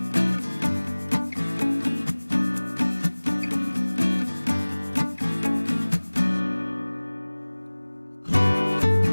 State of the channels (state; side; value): inverted; both; correlation -1.00